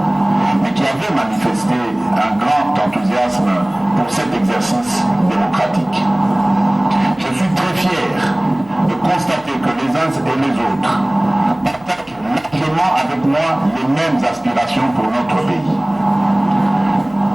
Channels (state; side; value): noise; right; hum, 28 dB below the sound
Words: mais qui avait manifesté un grand enthousiasme pour cet exercice démocratique. Je suis très fier de constater que les uns et les autres partagent largement avec moi les mêmes aspirations pour notre pays.